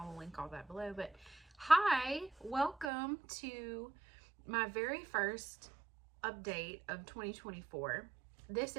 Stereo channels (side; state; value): left; drops out; at 2.9 s